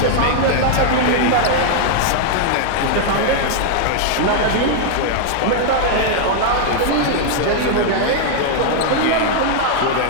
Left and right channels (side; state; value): both; different; correlation 0.00